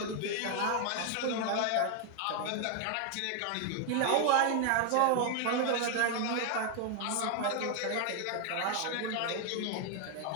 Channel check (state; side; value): different; both; correlation 0.00